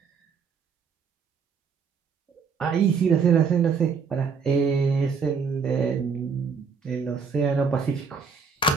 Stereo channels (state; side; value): quieter; left; 5.7 dB